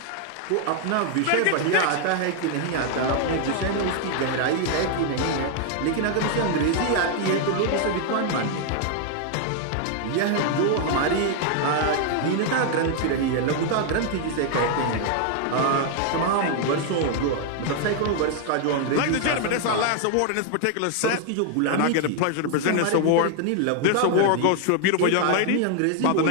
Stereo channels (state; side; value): different; both; correlation 0.00